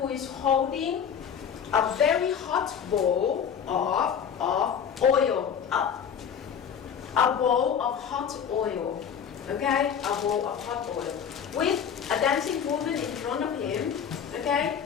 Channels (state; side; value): quieter; right; 7.7 dB